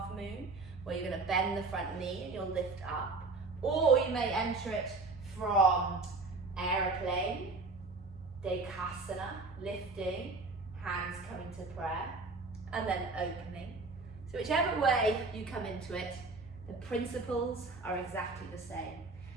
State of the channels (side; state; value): left; quieter; 3.6 dB